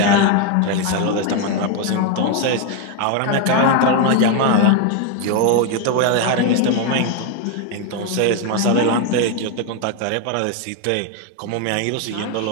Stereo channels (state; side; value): different; both; correlation 0.01